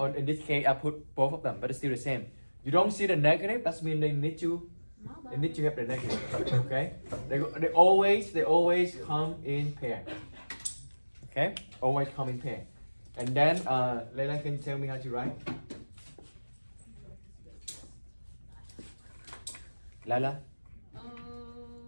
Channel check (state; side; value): inverted; both; correlation -1.00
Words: in this case, I put both of them, but it's still the same. You don't see the negative, that means they need to have the negative, okay? They always come in pair, okay? Always come in pair. And then, Leila, can you tell me how to write? Lala?